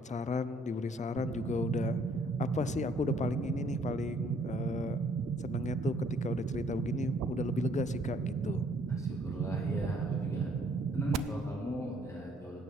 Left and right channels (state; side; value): normal; both; correlation 0.63